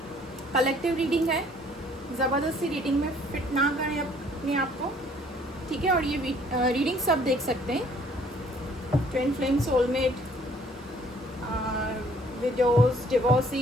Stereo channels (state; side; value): normal; both; correlation 0.59